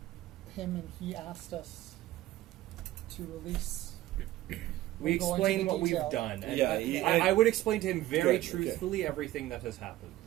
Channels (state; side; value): quieter; left; 15.2 dB